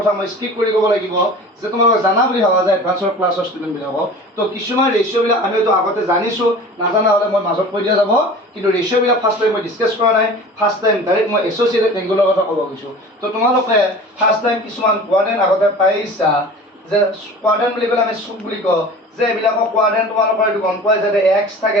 মই স্কিপ কৰি ক'ব লাগিব যে তোমালোক জানা বুলি ভাবা যায় এডভান্সৰ ক্লাছৰ ষ্টুডেণ্টবিলাকক তো কিছুমান ৰেচিঅ'বিলাক আমি হয়তো আগতে জানিছোঁ নাজানা হ'লে মই মাজত কৈ দিয়া যাব কিন্তু ৰেচিঅ'বিলাক ফাৰ্ষ্ট টাইম মই ডিছকাছ কৰা নাই ফাৰ্ষ্ট টাইম ডাইৰেক্ট মই এছ'চিয়েটেড এংগলৰ কথা ক'ব গৈছোঁ তো তোমালোকে ফাৰ্ষ্ট টাইম কিছুমান কোৱাড্ৰেণ্ট আগতে পাইছা যে কোৱাড্ৰেণ্ট বুলি ক'লে আমি চুক বুলি কওঁ যে এইবিলাকৰ কোৱাড্ৰেণ্ট তোমালোকৰ এইটো গম পোৱা যায় যে এক্স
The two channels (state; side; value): normal; both; correlation 0.40